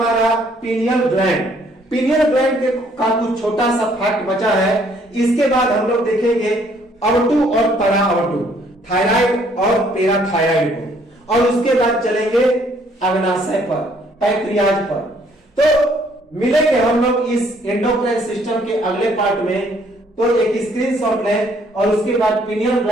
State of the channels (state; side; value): normal; both; correlation 0.64